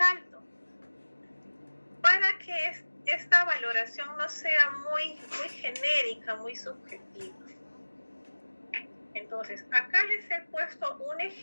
para que esta valoración no sea muy genérica, muy subjetiva. Entonces, acá les he puesto un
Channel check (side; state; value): both; inverted; correlation -1.00